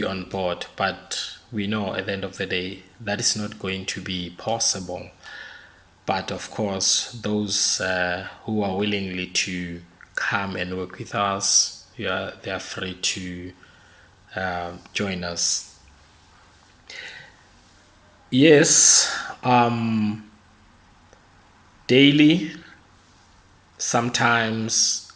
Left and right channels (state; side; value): identical; both; correlation 1.00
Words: on board, but we know at the end of the day that is not going to be possible. But of course, those who are willingly to come and work with us, they are free to join us. Yes, daily, sometimes